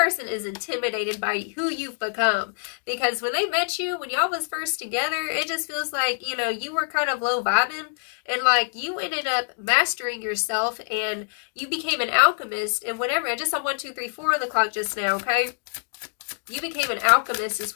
is intimidated by who you've become. Because when they met you, when y'all was first together, it just feels like, you know, you were kind of low vibing. And like you ended up mastering yourself and you became an alchemist and whatever. I just saw 1, 2, 3, 4 on the clock just now, okay? You became an alchemist is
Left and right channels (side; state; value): right; silent; 59 dB below the other